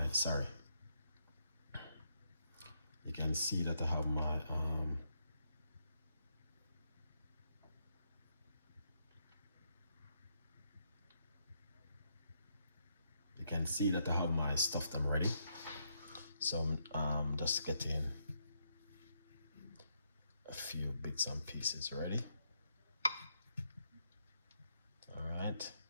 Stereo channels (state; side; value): inverted; both; correlation -0.78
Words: you can see that I have my you can see that I have my stuff them ready. So I'm just getting a few bits and pieces ready. All right,